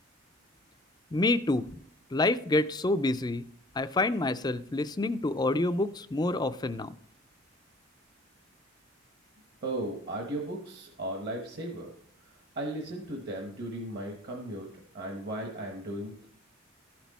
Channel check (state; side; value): normal; both; correlation 0.51